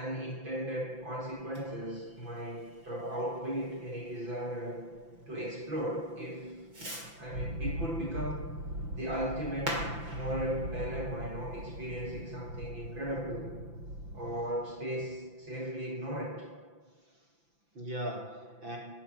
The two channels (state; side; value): late; left; 5.9 ms